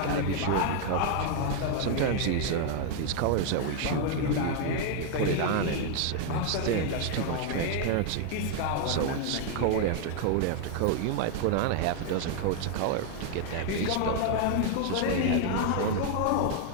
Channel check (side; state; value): both; different; correlation 0.00